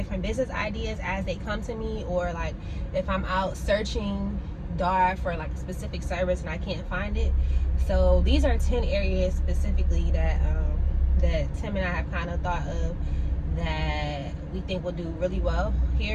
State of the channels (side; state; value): both; identical; correlation 1.00